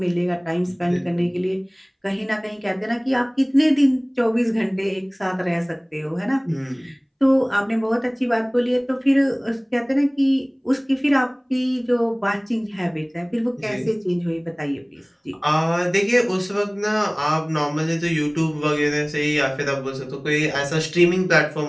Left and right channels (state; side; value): identical; both; correlation 1.00